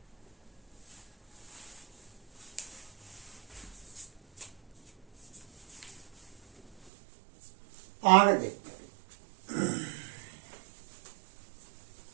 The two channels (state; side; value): drops out; left; at 6.9 s